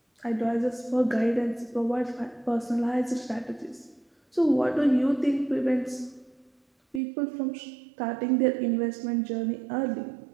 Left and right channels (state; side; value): drops out; left; at 7.0 s